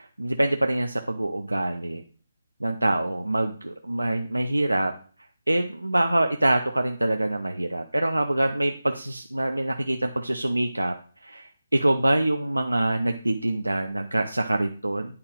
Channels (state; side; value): inverted; both; correlation -0.97